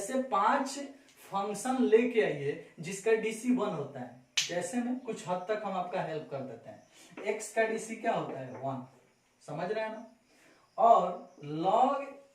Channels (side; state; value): both; identical; correlation 1.00